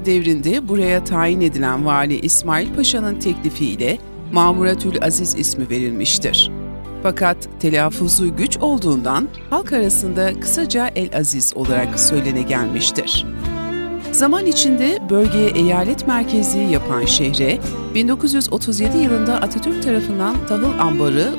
devrinde buraya tayin edilen Vali İsmail Paşa'nın teklifiyle Mamuratül Aziz ismi verilmiştir. Fakat telaffuzu güç olduğundan halk arasında kısaca El-Aziz olarak söylene gelmiştir. Zaman içinde bölgeye eyalet merkezi yapan şehre 1937 yılında Atatürk tarafından tahıl ambarı,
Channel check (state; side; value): inverted; both; correlation -1.00